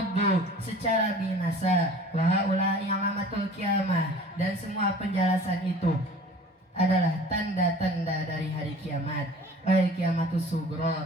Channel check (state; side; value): normal; both; correlation 0.46